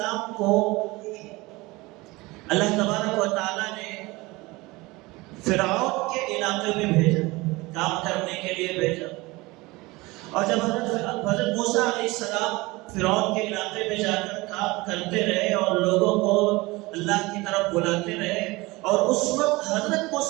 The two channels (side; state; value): left; quieter; 22.3 dB